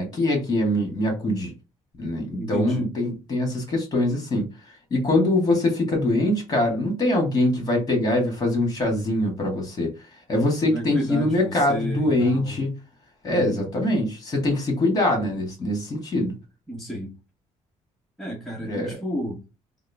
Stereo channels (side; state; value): both; normal; correlation 0.60